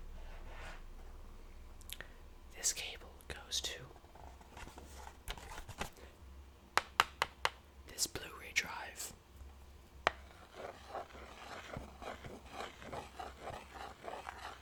This cable goes to this Blu-ray drive.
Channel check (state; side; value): identical; both; correlation 1.00